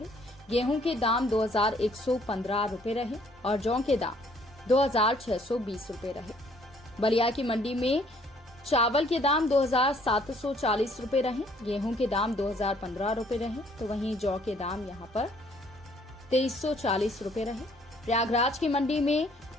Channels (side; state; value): both; normal; correlation 0.62